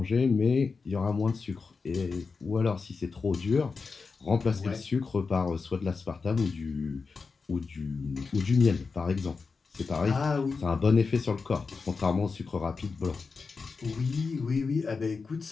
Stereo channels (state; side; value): quieter; right; 4.7 dB